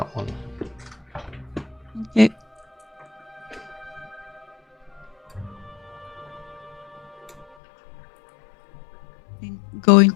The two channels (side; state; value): right; drops out; at 7.5 s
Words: one. Okay. Go